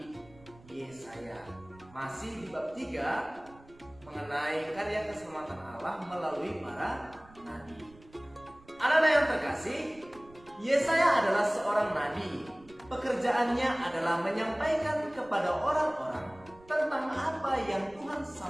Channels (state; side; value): noise; right; rumble, 24 dB below the sound